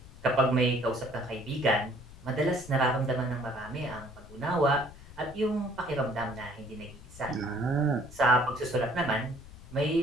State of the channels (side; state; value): left; noise; rumble, 18 dB below the sound